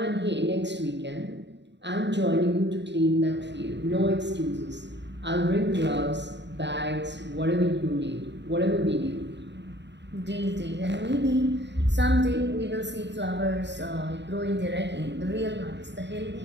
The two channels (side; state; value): left; late; 0.51 ms